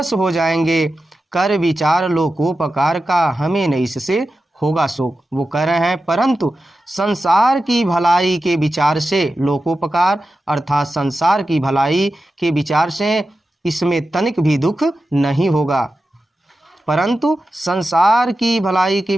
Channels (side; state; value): both; normal; correlation 0.92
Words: हो जाएंगे। कर विचार लोकोपकार का हमें न इससे होगा शोक। वो कह रहे हैं परंतु संसार की भलाई के विचार से लोकोपकार अर्थात संसार की भलाई के विचार से इसमें तनिक भी दुख नहीं होगा। परंतु संसार की भलाई के